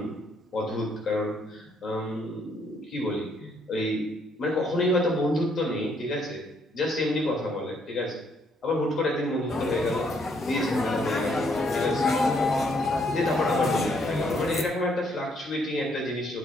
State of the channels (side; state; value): both; normal; correlation 0.70